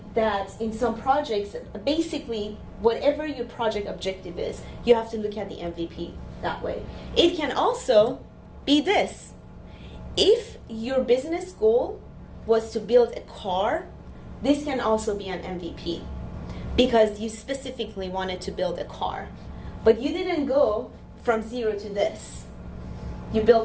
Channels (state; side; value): identical; both; correlation 1.00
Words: that in some projects, basically, whatever your project objective is, you have to look at the MVP that way. It can also be this. If your business goal was to build a car, this can also be an MVP because you specifically wanted to build a car. But you didn't go from 0 to this. You